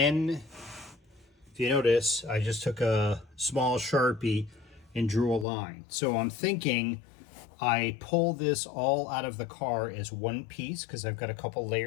you notice, I just took a small Sharpie and drew a line. So I'm thinking I pull this all out of the car as one piece because I've got a couple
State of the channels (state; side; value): drops out; right; at 5.5 s